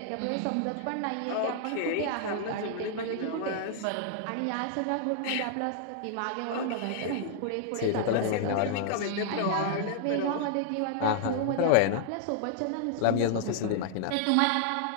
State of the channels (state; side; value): different; both; correlation -0.01